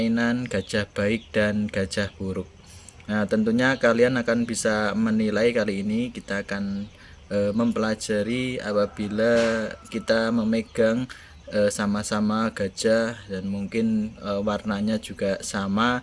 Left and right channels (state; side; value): identical; both; correlation 1.00